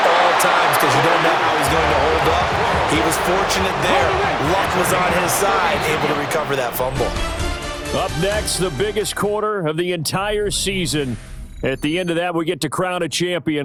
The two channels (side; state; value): both; identical; correlation 1.00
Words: all times because you don't know how he's going to hold up. He was fortunate there. Luck was on his side, able to recover that fumble. Up next, the biggest quarter of the entire season. At the end of that, we get to crown a